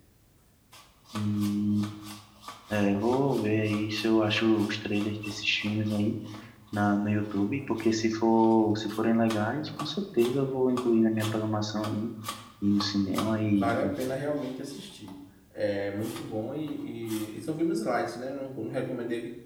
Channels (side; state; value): both; identical; correlation 1.00